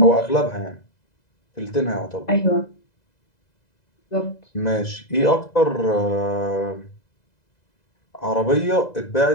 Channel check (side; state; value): right; late; 2.0 ms